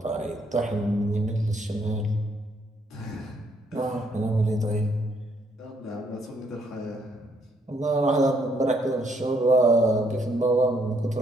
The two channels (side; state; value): both; normal; correlation 0.70